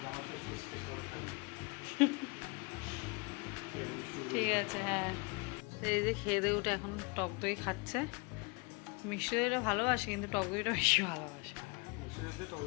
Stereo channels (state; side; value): quieter; right; 29.7 dB